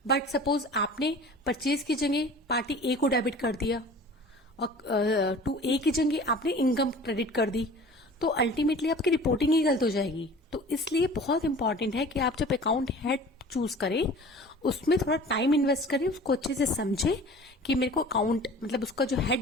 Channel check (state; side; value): normal; both; correlation 0.43